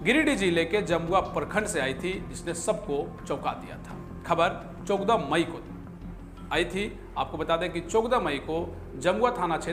गिरिडीह जिले के जमुआ प्रखंड से आई थी, जिसने सबको चौंका दिया था। खबर 14 मई को आई थी। आपको बता दें कि 14 मई को जमुआ थाना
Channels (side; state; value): both; identical; correlation 1.00